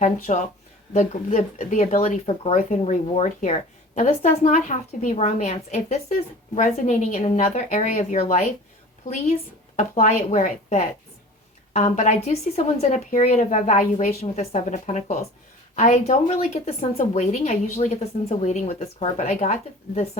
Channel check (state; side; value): normal; both; correlation 0.41